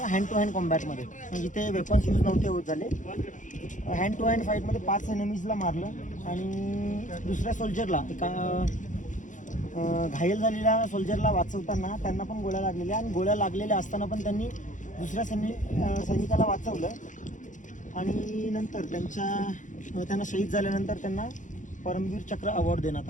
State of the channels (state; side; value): late; right; 0.37 ms